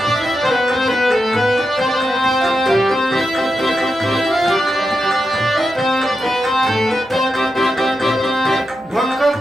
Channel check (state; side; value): noise; right; hum, 28 dB below the sound